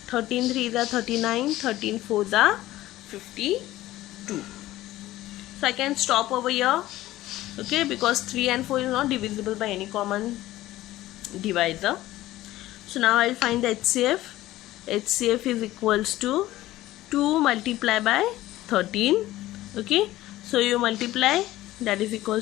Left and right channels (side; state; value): right; quieter; 15.9 dB